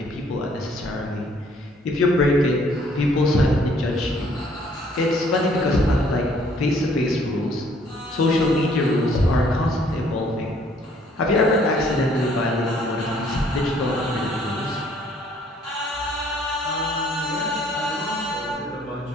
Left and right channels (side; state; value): both; normal; correlation 0.62